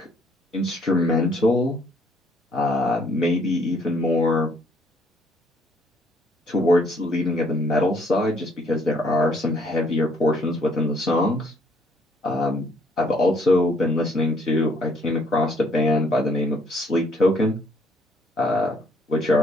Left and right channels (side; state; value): both; normal; correlation 0.64